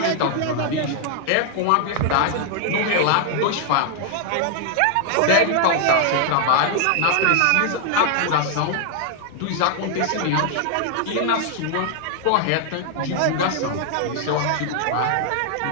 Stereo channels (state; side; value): different; both; correlation 0.00